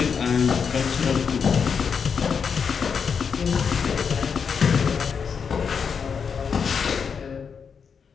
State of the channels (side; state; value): right; quieter; 6.3 dB